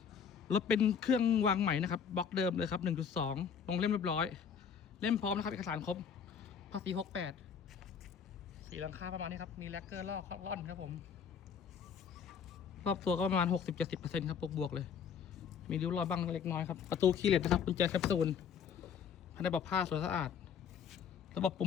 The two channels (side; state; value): right; quieter; 7.0 dB